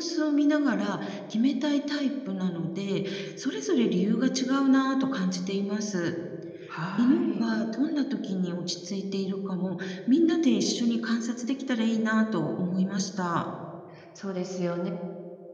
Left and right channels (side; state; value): both; identical; correlation 1.00